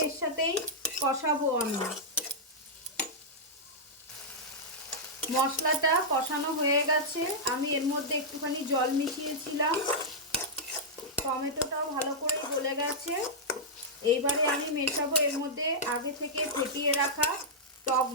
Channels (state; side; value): normal; both; correlation -0.08